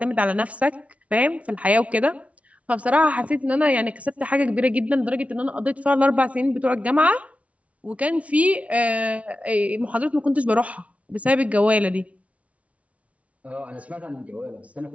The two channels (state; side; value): late; left; 0.065 ms